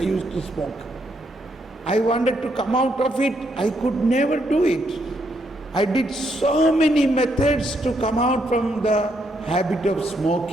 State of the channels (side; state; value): both; normal; correlation 0.76